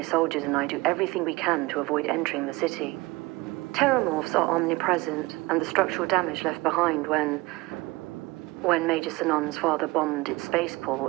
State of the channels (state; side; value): quieter; left; 21.9 dB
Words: soldiers and I do everything we can to avoid entering the city. Terramorphs are omnipresent, and the structural damage left behind when Major Sinan's father bombed its